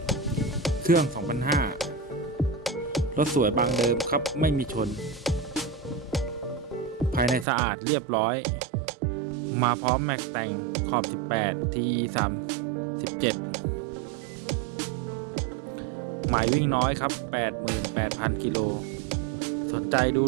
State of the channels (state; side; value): drops out; left; at 7.5 s